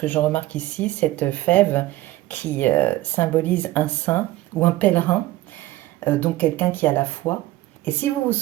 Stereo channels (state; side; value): quieter; left; 16.8 dB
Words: je remarque ici, cette fève qui symbolise un saint ou un pèlerin, donc quelqu'un qui a la foi. Et si vous vous